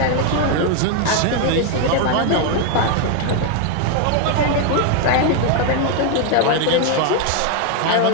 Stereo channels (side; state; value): both; different; correlation 0.01